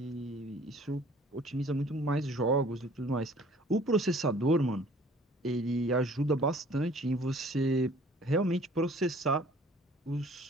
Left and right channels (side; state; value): both; normal; correlation 0.53